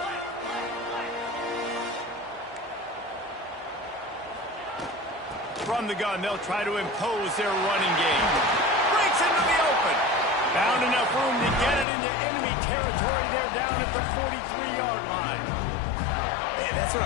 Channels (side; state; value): right; drops out; at 11.9 s